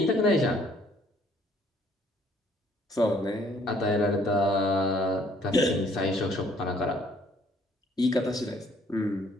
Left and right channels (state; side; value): normal; both; correlation 0.62